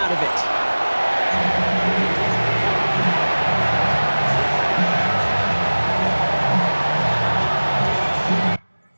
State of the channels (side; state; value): both; inverted; correlation -1.00